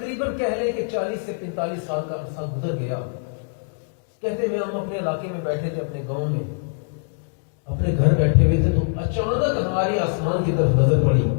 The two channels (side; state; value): right; silent; digital silence